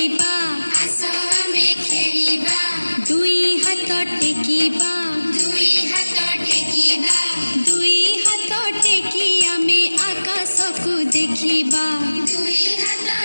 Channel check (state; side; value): inverted; both; correlation -1.00